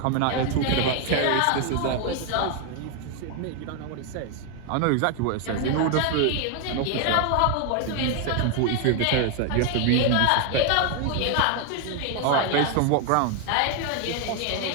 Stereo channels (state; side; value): different; both; correlation 0.01